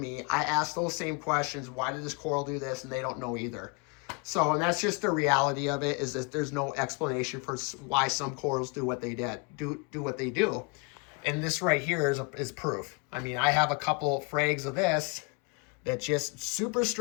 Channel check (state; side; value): quieter; right; 30.6 dB